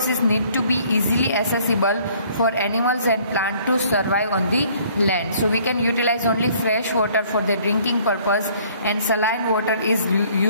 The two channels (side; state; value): both; inverted; correlation -0.59